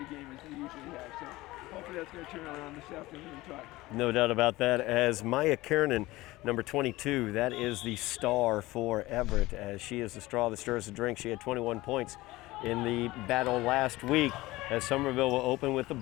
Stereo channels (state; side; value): quieter; right; 19.1 dB